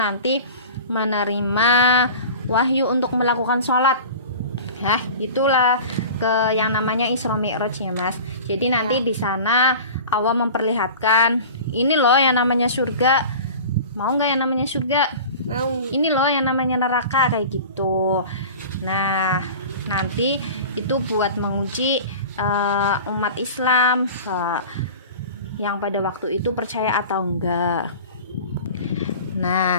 menerima wahyu untuk melakukan sholat. Nah, itulah ke yang namanya Isra Mi'raj ya, Mas. Jadi nanti di sana Allah memperlihatkan ini loh yang namanya surga. Mau nggak yang namanya surga? Mau. Ini loh yang namanya neraka kayak gitu. Nah, nanti itu buat menguji umat Islam yang pada waktu itu percaya atau enggak.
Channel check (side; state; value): both; inverted; correlation -0.37